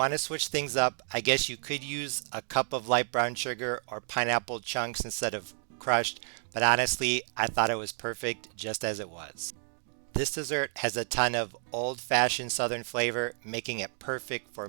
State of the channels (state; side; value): silent; left; digital silence